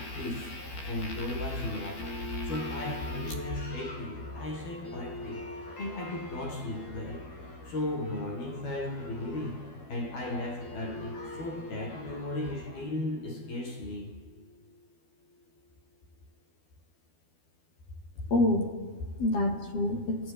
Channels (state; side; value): late; right; 12 ms